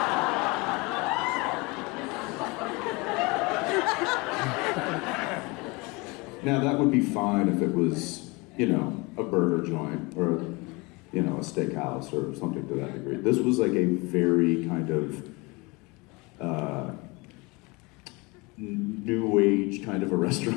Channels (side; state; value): right; quieter; 26.2 dB